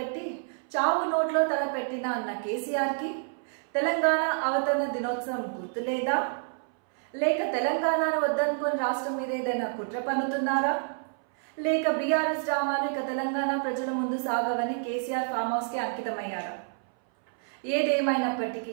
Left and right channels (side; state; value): left; silent; 59 dB below the other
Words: చావు నోట్లో తల పెట్టిన అన్న కేసీఆర్కి తెలంగాణ అవతరణ దినోత్సవం గుర్తులేదా? లేక తెలంగాణను వద్దనుకొని రాష్ట్రం మీద ఏదైనా కుట్ర పన్నుతున్నారా? లేక బీఆర్ఎస్ డ్రామాలు ఇక తెలంగాణ ప్రజల ముందు సాగవని కేసీఆర్ ఫామ్ హౌస్కి అంకితమయ్యారా?